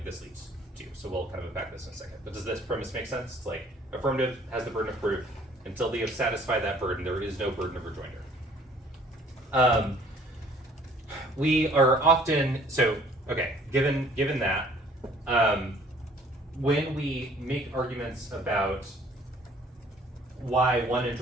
this leads to. So we'll kind of unpack this in a second. But does this premise make sense? It's like affirmative has the burden of proof. Until they have satisfied that burden, there is no burden of rejoinder. We are often, so, okay, given that, when we make arguments about why one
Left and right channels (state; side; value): normal; both; correlation 0.56